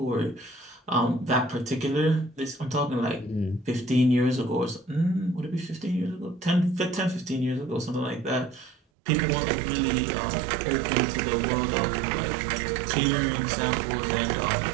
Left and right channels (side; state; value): left; drops out; at 8.8 s